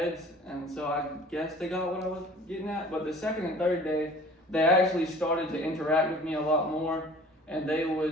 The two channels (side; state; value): both; normal; correlation 0.47